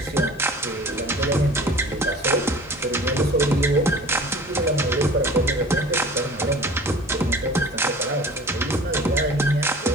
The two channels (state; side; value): normal; both; correlation 0.43